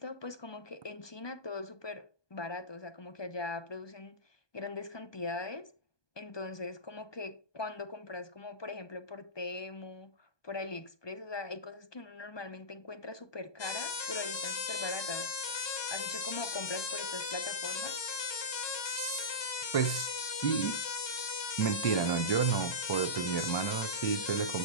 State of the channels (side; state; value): right; late; 1.2 ms